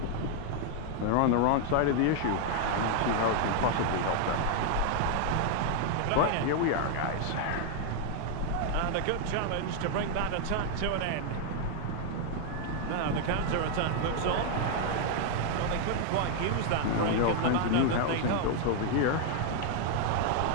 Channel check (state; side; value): different; both; correlation 0.00